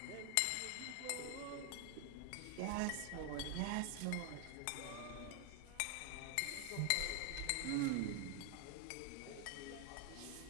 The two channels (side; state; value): both; different; correlation 0.00